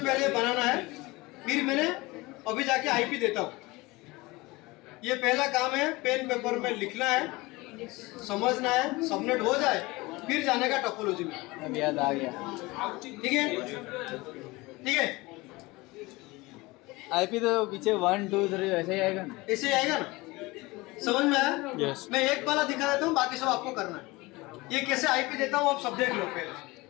बनाना है, फिर मैंने अभी जाके आईपी देता हूँ। ये पहला काम है, पेन पेपर में लिखना है, समझना है, सबनेट हो जाए फिर जाने का टोपोलॉजी में। अब याद आ गया। ठीक है, ठीक है, आईपी तो पीछे 1 2 3 ऐसे ही आएगा ना। ऐसे ही आएगा ना? समझ में आया? Yes. मैं एक वाला दिखा देता हूँ, बाकी सब आपको करना है। ये कैसे आईपी देता हूँ आप सब देख लो पहले।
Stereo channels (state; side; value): quieter; right; 22.2 dB